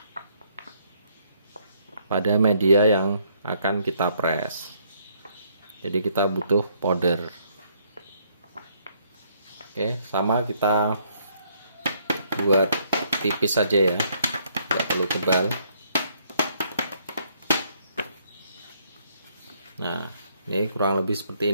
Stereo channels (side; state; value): both; inverted; correlation -0.69